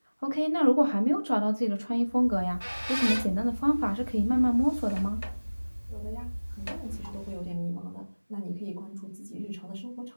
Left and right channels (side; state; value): both; inverted; correlation -1.00